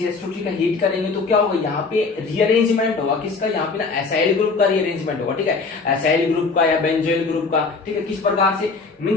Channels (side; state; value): right; quieter; 4.3 dB